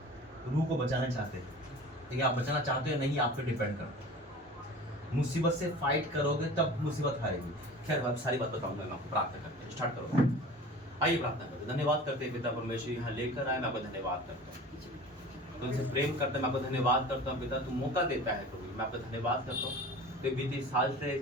रूह को बचाना चाहते हैं, ठीक है? आप बचाना चाहते हो या नहीं, आप पे डिपेंड करता है। मुसीबत से फाइट करोगे तब मुसीबत हारेगी। खैर, मैं सारी बात बताऊंगा, मैं आपको प्रार्थना करते हैं, स्टार्ट करो। आइए प्रार्थना करते हैं। धन्यवाद करते हैं पिता परमेश्वर, यहाँ लेकर आए, मैं आपका धन्यवाद करता हूँ। तुमसे प्रेम करते हैं, मैं आपका धन्यवाद करता हूँ पिता, तू मौका देता है प्रभु, मैं आपका धन्यवाद करता हूँ। तो बीते साल से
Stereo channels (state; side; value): normal; both; correlation 0.40